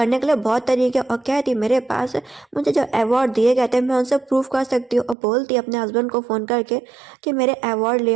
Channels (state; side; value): drops out; left; at 5.2 s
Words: के लिए बहुत तरीके, और कहती मेरे पास मुझे जो अवार्ड दिए गए थे मैं उनसे प्रूफ कर सकती हूँ। और बोलती अपने हस्बैंड को फ़ोन करके कि मेरे अवार्ड ले